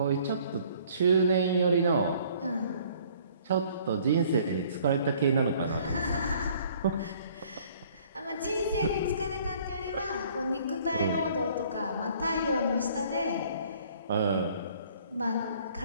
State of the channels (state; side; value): inverted; both; correlation -0.57